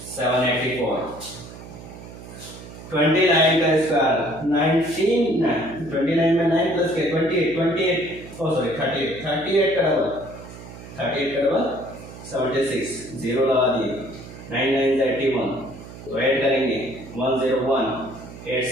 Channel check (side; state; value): right; noise; hum, 15 dB below the sound